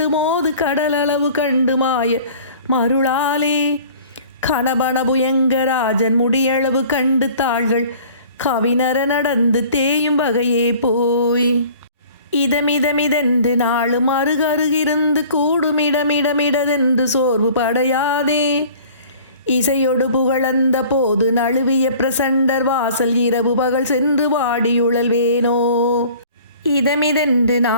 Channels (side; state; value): both; inverted; correlation -0.48